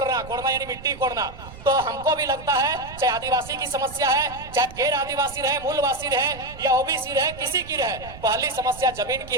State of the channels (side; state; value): right; noise; rumble, 16 dB below the sound